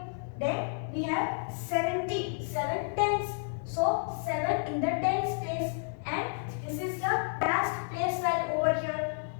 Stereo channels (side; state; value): right; silent; digital silence